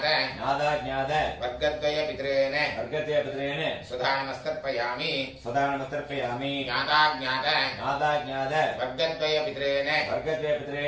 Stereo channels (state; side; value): identical; both; correlation 1.00